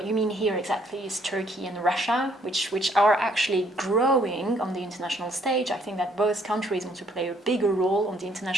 you mean here exactly is Turkey and Russia, which are actually growing on the international stage. I think that both countries want to play a bigger role on the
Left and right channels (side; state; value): both; normal; correlation 0.66